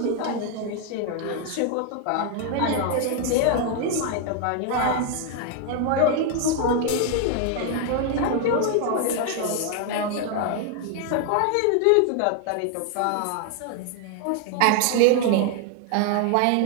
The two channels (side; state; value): both; different; correlation 0.01